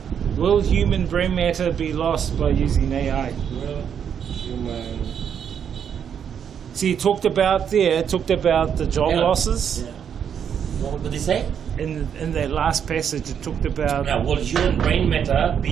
will human brain matter be lost by using AI? Will human? See, he talked about the job losses. Yeah. What did he say? In that last passage, it talked about will human brain matter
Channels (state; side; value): quieter; left; 8.1 dB